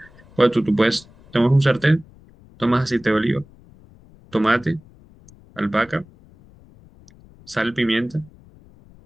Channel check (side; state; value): left; noise; rumble, 26 dB below the sound